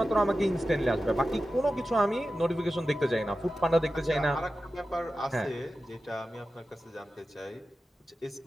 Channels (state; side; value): normal; both; correlation 0.93